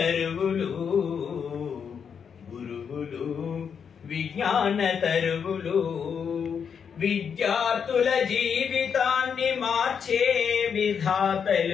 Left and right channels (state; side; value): quieter; right; 7.0 dB